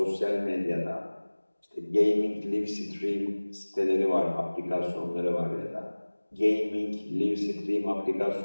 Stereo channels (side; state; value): both; inverted; correlation -1.00